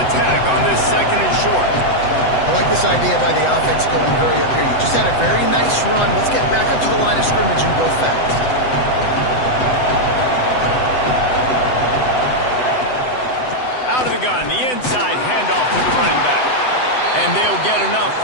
attack on this second and short. I like this idea by the offense going hurry up here. You just had a very nice run. Let's get back up to the line of scrimmage and go fast. Out of the gun, the inside handoff to the running back. And they'll get enough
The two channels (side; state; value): right; late; 7.9 ms